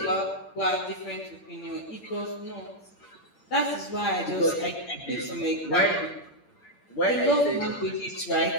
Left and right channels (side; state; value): right; late; 8.7 ms